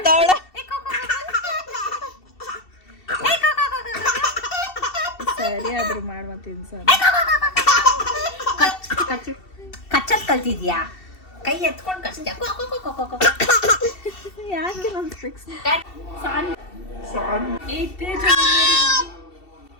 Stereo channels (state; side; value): late; right; 2.7 ms